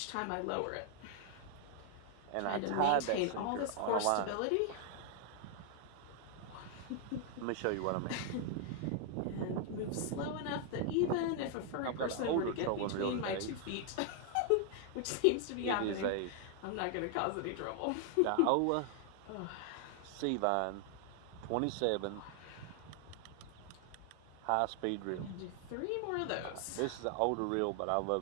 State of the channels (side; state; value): both; different; correlation 0.00